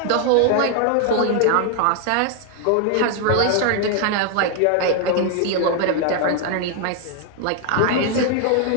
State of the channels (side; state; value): both; different; correlation 0.00